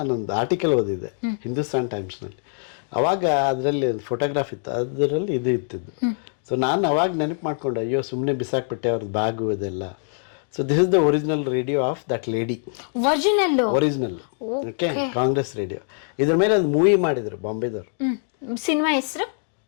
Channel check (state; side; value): silent; right; digital silence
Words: ಆರ್ಟಿಕಲ್ ಓದಿದ್ದೆ ಹಿಂದೂಸ್ತಾನ್ ಟೈಮ್ಸ್ನಲ್ಲಿ. ಅವಾಗ ಅದರಲ್ಲಿ ಒಂದು ಫೋಟೋಗ್ರಾಫ್ ಇತ್ತು, ಅದರಲ್ಲಿ ಇದು ಇತ್ತಿದ್ದು. ಸೊ ನಾನು ಅವಾಗ ನೆನಪು ಮಾಡ್ಕೊಂಡೆ, ಅಯ್ಯೋ ಸುಮ್ಮನೆ ಬಿಸಾಕ್ಬಿಟ್ಟೆ ಅವ್ರದ್ದು ಬ್ಯಾಗು ಇದೆಲ್ಲ. So this is the original radio of that lady. Original okay, Congress radio. ಇದ್ರ ಮೇಲೆ ಒಂದು ಮೂವಿ ಮಾಡಿದ್ರು ಬಾಂಬೆದವರು. ಸಿನಿಮಾ ಹೆಸರು